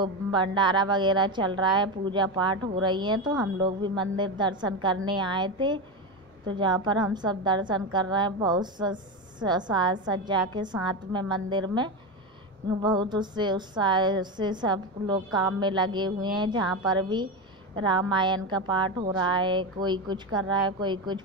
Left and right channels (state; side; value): normal; both; correlation 0.16